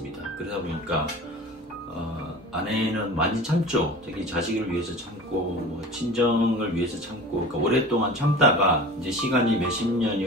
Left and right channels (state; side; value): normal; both; correlation 0.37